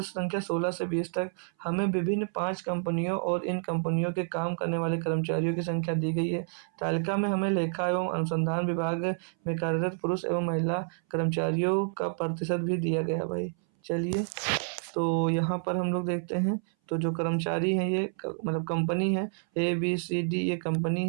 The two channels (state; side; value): silent; left; 58 dB below the other